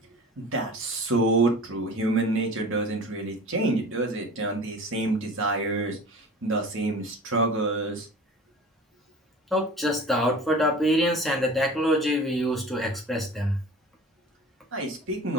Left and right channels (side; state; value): both; normal; correlation 0.40